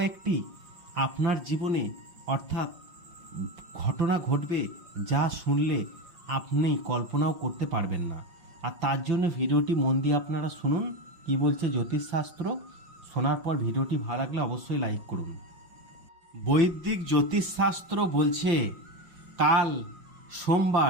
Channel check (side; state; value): left; late; 5.6 ms